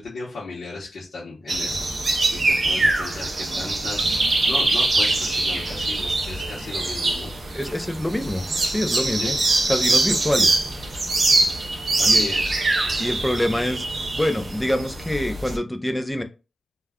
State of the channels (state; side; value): normal; both; correlation 0.92